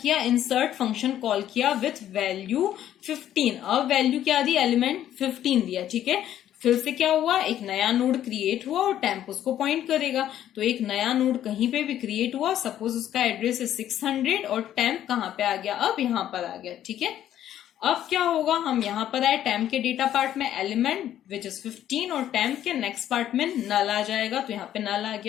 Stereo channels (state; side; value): quieter; right; 11.4 dB